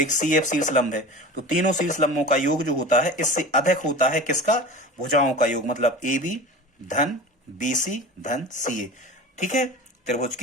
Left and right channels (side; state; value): both; normal; correlation 0.35